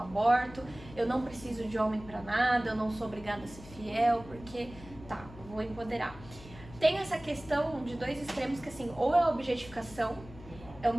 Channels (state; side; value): noise; left; hum, 17 dB below the sound